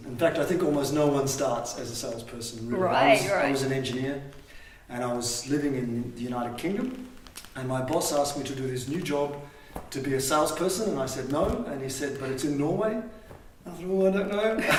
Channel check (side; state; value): both; identical; correlation 1.00